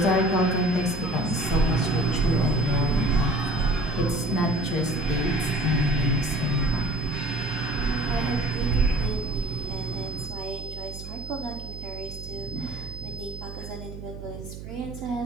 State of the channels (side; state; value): right; noise; hum, 11 dB below the sound